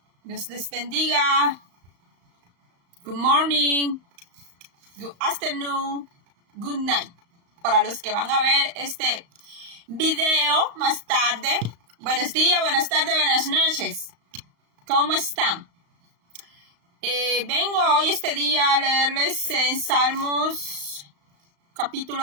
Dios les bendiga. Good morning. Good afternoon. Good night. Para los que van a ver este video más tarde. Buenos días, buenas tardes, buenas noches. ¿Cómo están? Vengo hoy este día a leerles en Salmos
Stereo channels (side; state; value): left; late; 35 ms